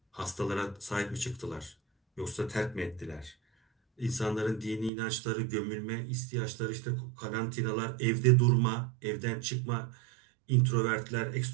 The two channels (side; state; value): left; drops out; at 4.9 s